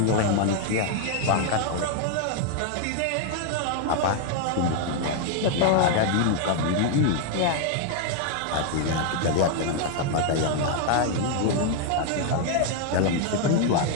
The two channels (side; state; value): both; different; correlation 0.00